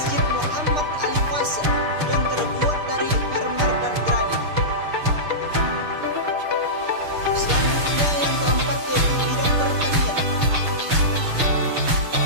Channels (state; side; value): late; left; 6.7 ms